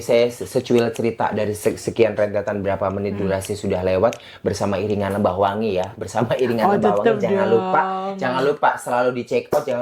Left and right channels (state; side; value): identical; both; correlation 1.00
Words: saya secuil cerita dari sekian rentetan berapa menit durasi sudah lewat bersama iringan Lebah Wangi ya. Bersama iringan Lebah Wangi, jangan lupa selalu di check out,